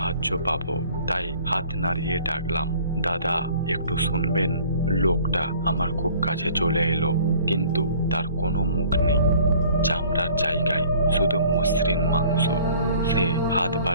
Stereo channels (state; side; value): inverted; both; correlation -0.52